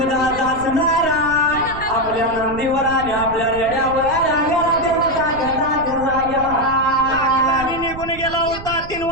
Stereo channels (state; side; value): noise; right; rumble, 13 dB below the sound